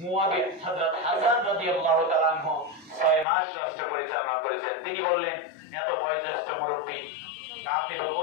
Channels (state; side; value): drops out; right; at 3.2 s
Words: মুয়াবিয়া, হযরত হাসান রাদিয়াল্লাহু তাআলা আনহু 6 মাস রাষ্ট্র পরিচালনা করেছেন। তিনি বললেন, এত বয়োজ্যেষ্ঠ মুরব্বী কাতিল